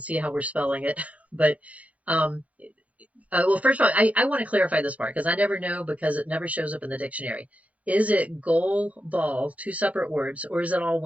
see how we're spelling it. But well, first of all, I want to clarify this part because I never know because it never shows up in the dictionary. Is it goal ball, two separate words, or is it all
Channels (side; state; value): left; late; 0.068 ms